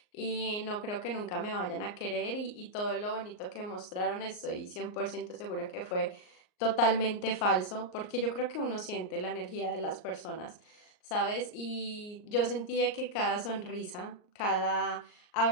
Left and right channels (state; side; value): late; right; 38 ms